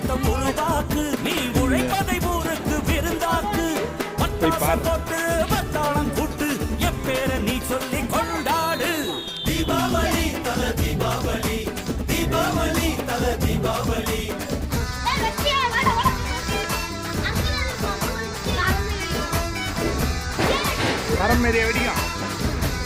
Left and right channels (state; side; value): identical; both; correlation 1.00